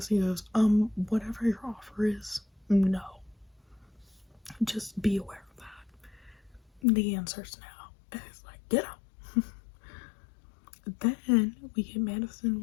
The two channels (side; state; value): right; drops out; at 6.8 s